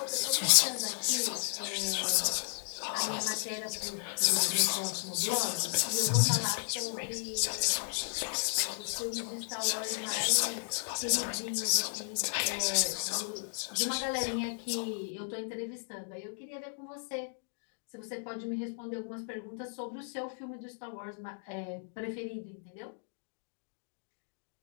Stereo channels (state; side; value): silent; right; digital silence